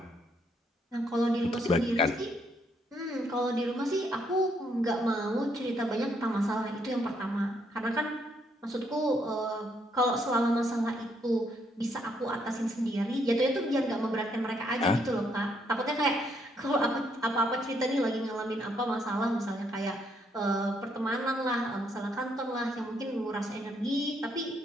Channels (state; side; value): normal; both; correlation 0.72